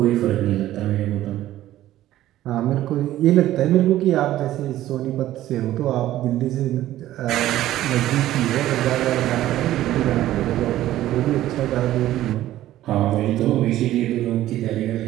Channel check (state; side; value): quieter; left; 14.0 dB